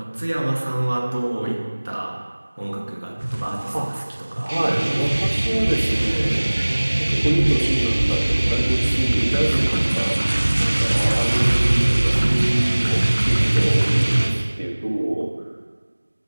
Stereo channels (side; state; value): both; inverted; correlation -1.00